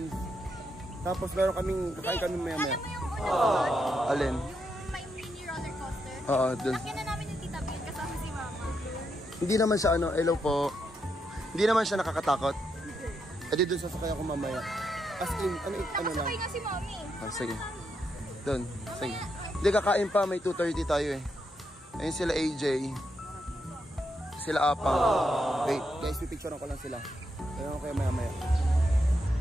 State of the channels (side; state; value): both; normal; correlation 0.81